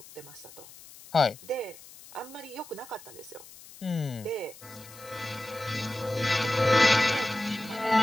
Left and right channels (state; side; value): noise; left; hiss, 19 dB below the sound